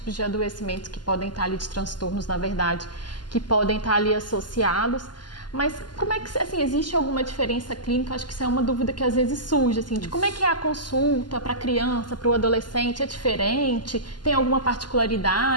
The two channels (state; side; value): late; right; 0.71 ms